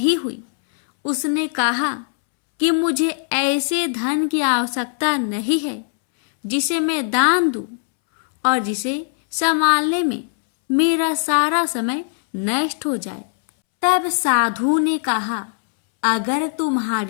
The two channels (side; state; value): right; silent; 66 dB below the other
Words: हुई। उसने कहा कि मुझे ऐसे धन की आवश्यकता नहीं है जिसे मैं दान दूं और जिसे संभालने में मेरा सारा समय नष्ट हो जाए। तब साधु ने कहा, अगर